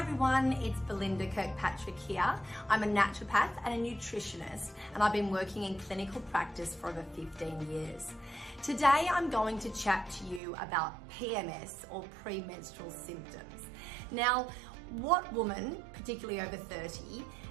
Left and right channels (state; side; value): drops out; left; at 10.4 s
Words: everyone, it's Belinda Kirkpatrick here. I'm a naturopath and a nutritionist, and I've been working in clinical practice for over 15 years. Today I'm going to chat to you about PMS, or premenstrual symptoms. Now, what woman, particularly over 30,